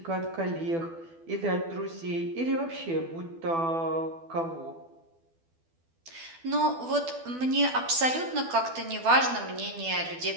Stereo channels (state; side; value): late; left; 12 ms